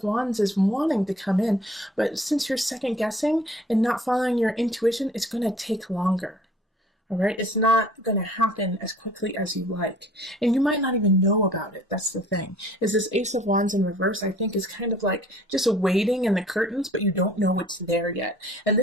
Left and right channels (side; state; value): both; normal; correlation 0.53